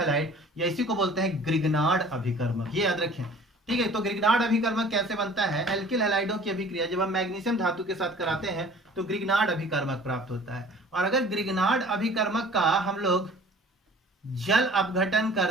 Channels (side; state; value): both; normal; correlation 0.48